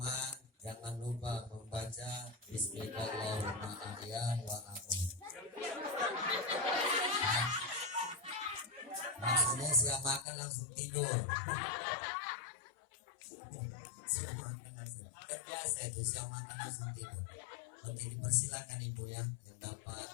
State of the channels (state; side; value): drops out; right; at 10.2 s